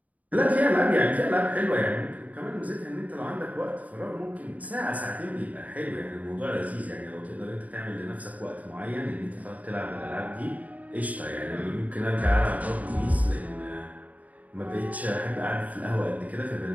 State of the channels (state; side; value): late; left; 0.073 ms